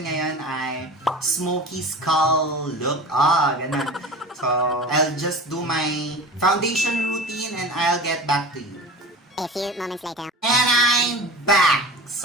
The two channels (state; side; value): normal; both; correlation 0.34